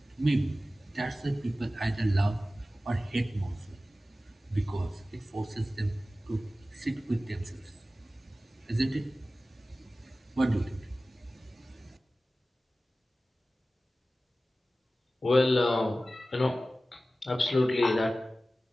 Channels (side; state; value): both; normal; correlation 0.96